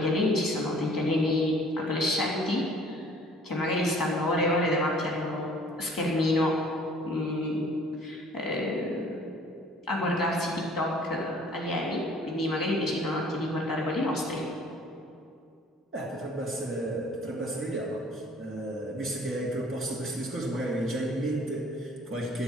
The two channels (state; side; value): normal; both; correlation 0.54